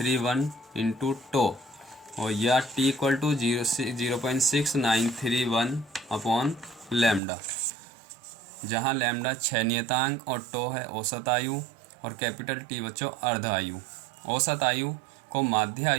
into tau और या T equal to 0.6931 upon lambda, जहाँ लैम्डा 6 नियतांक और टो है औसत आयु और कैपिटल टी बच्चों अर्ध आयु। औसत आयु को माध्य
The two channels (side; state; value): left; drops out; at 7.2 s